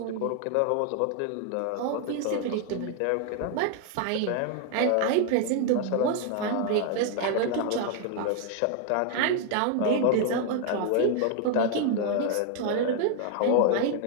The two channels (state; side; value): different; both; correlation 0.00